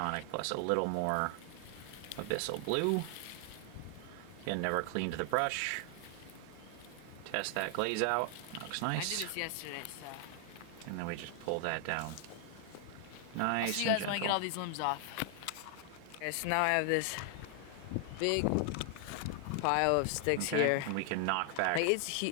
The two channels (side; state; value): both; different; correlation 0.00